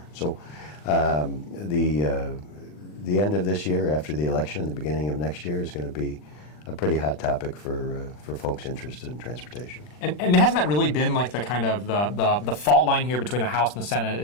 So the end of this year, after the election, and the beginning of next year is going to be a pretty hot topic for folks interested in transportation. And hasn't that really been like the kind of the fault line here between the House and the Senate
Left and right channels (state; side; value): late; right; 40 ms